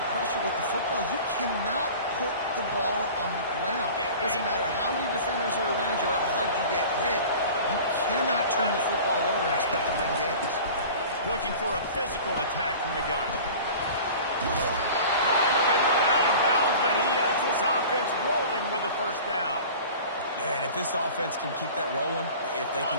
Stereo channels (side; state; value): both; inverted; correlation -0.40